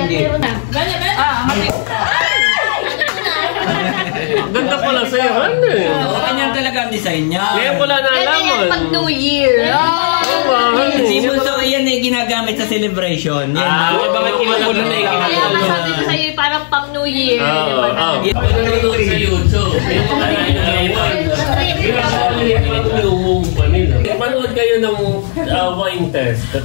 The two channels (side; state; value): right; silent; digital silence